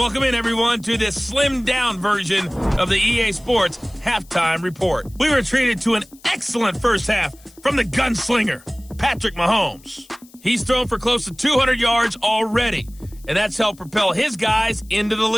in, everyone, to this slimmed-down version of the EA Sports Halftime Report. We were treated to an excellent first half from the gunslinger, Patrick Mahomes. He's thrown for close to 200 yards already, and that's helped propel his guys into the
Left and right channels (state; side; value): noise; left; hiss, 26 dB below the sound